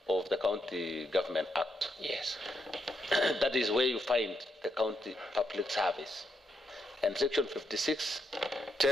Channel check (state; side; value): normal; both; correlation 0.81